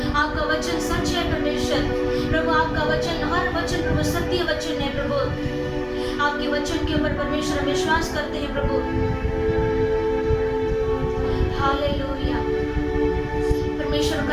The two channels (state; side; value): identical; both; correlation 1.00